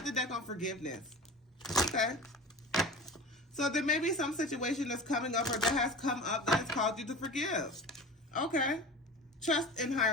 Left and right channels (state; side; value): normal; both; correlation 0.34